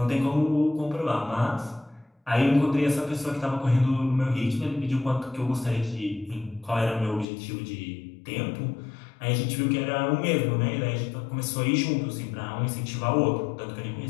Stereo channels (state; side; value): drops out; right; at 7.2 s